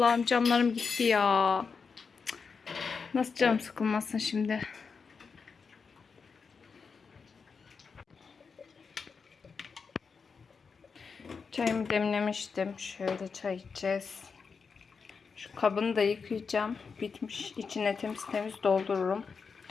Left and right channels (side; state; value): right; quieter; 5.4 dB